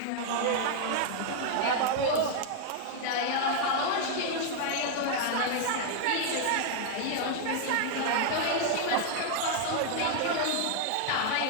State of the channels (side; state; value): both; different; correlation 0.00